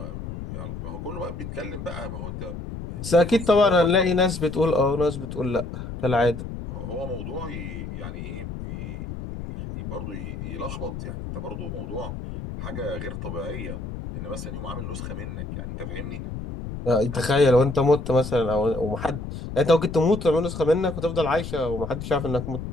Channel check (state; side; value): noise; left; rumble, 8 dB below the sound